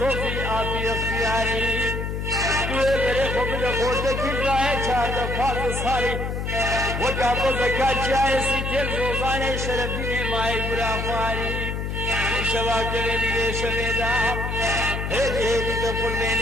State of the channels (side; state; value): left; noise; hum, 3 dB below the sound